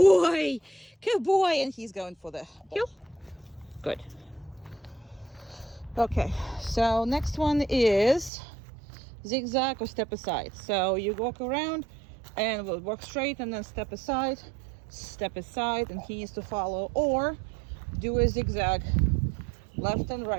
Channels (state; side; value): drops out; left; at 8.3 s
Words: Good boy. And he's going for the heel. Good. Okay, so next one is zigzag or step aside. So you walk around and we'll walk straight and then step aside, and he needs to follow, or do a zigzag left and